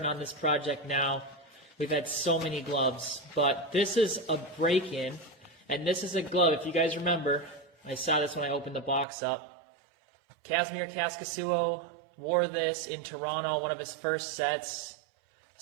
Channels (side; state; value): left; drops out; at 9.1 s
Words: on this project now. We've had so many gloves, but this is a break-in, and this is a glove. If you guys remember, I saw this when I opened the box up. Casimir Kaskasuo wore this in Toronto, one of his first sets.